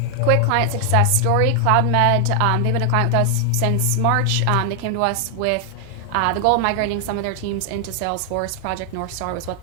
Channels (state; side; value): different; both; correlation 0.00